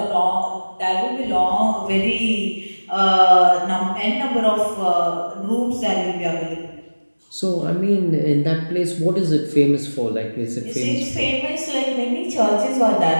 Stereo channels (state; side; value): inverted; both; correlation -1.00